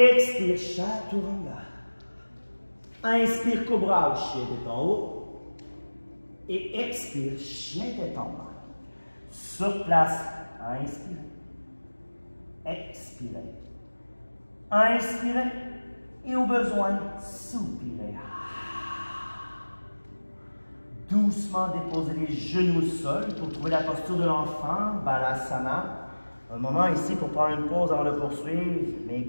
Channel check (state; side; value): inverted; both; correlation -1.00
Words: chaturanga. Inspire, cobra ou chien, tête en haut. Et expire, chien, tête en bas. Sur place, inspirez. Expirez. Inspirez. Et au besoin, soupirez. Doucement déposez les genoux au sol pour trouver la posture de l'enfant, Balasana. Un moment ici pour prendre une pause avant de poursuivre, mais